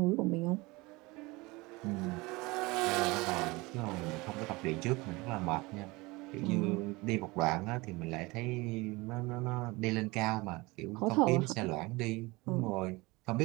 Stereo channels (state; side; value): quieter; left; 23.3 dB